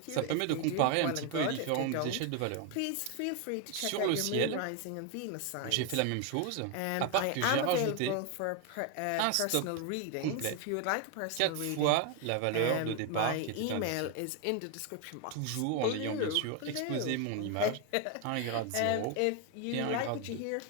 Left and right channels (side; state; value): both; different; correlation 0.01